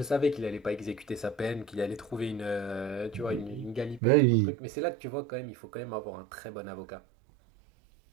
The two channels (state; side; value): drops out; left; at 4.0 s